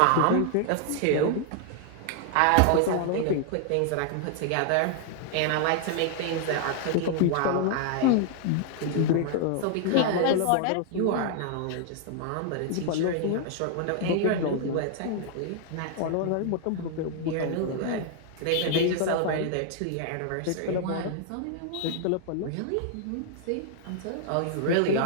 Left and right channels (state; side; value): different; both; correlation 0.00